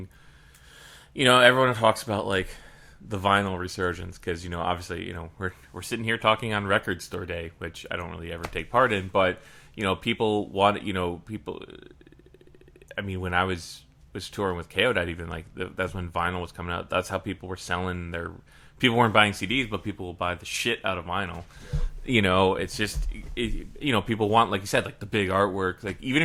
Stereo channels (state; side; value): identical; both; correlation 1.00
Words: everyone talks about like the vinyl resurgence because obviously we're sitting here talking on Record Store Day, which I don't really ever take part in, but people want people. I mean, when I was touring with Chaodite, even like that's when vinyl was coming out. That's how people were selling their. People weren't buying CDs, but people will buy the shit out of vinyl. Yeah. It's just people want, like you said, like the big artwork. Like even